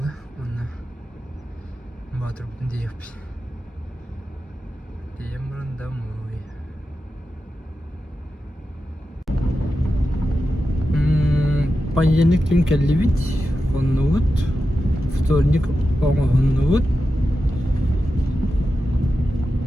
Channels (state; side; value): normal; both; correlation 0.91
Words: Onunla batır bütün diye yapayım. Темрон домой. Понедельник тун келлибит, оннуут. Вторник оңооннуут.